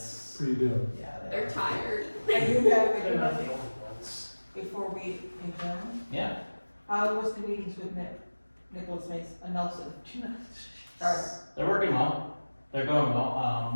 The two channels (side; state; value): both; inverted; correlation -1.00